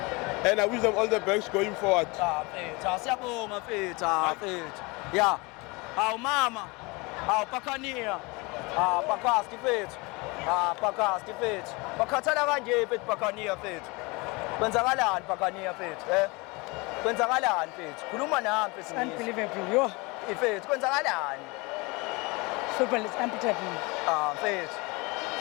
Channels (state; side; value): quieter; right; 26.3 dB